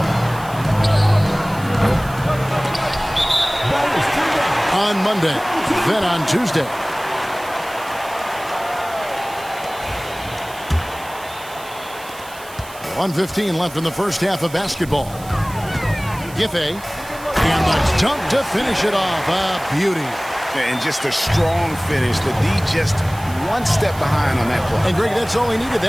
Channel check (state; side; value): noise; right; hiss, 18 dB below the sound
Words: On Monday, then on Tuesday. .115 left in the first half of basketball. Giffey, and the dunk to finish it off. A beauty. And just a strong finish. The D just 1 step behind on that play. And Greg, that's all he needed.